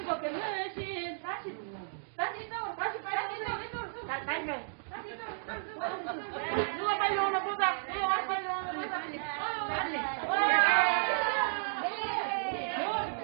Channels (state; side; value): silent; left; digital silence